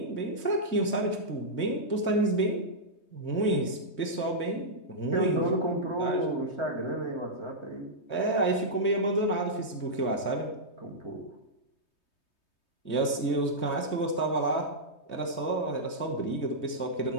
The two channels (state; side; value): late; right; 3.2 ms